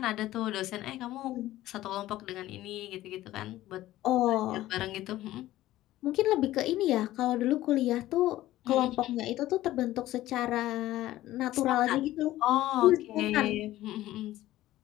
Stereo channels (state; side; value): quieter; right; 15.3 dB